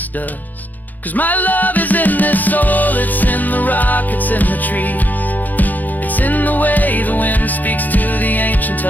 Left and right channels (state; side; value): late; right; 0.083 ms